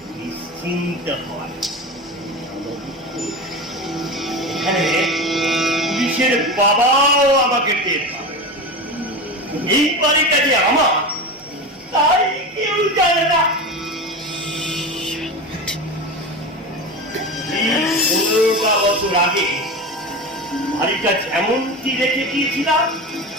নিশ্চিন্ত হয়। এখানে পুলিশের বাবাও আমাকে টের পাবে। এই বাড়িটা যে আমার তাই কেউ জানে না। 15টা বছর আগে বাড়িটা যেমনটি রেখে দিয়েছিলাম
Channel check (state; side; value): normal; both; correlation 0.25